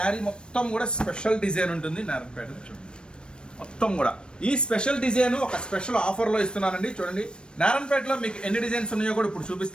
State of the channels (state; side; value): late; right; 0.054 ms